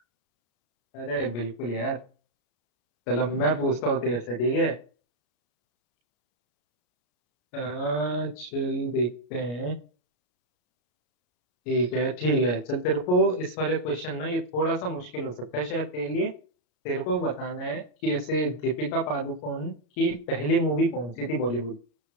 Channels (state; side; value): late; right; 33 ms